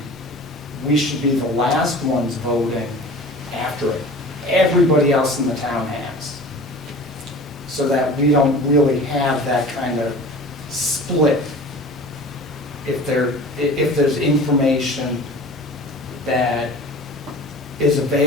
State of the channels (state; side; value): normal; both; correlation 0.40